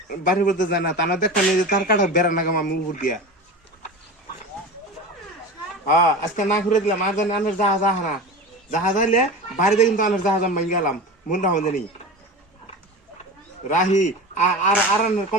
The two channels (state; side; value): normal; both; correlation 0.30